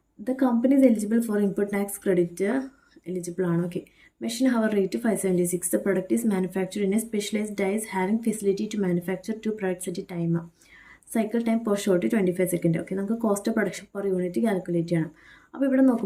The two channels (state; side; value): identical; both; correlation 1.00